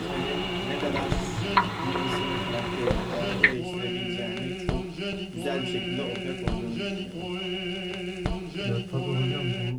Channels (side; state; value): both; identical; correlation 1.00